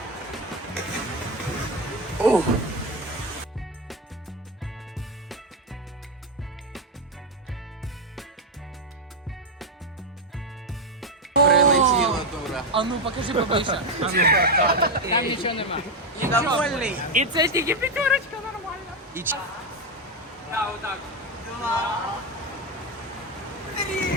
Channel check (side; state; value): both; normal; correlation 0.08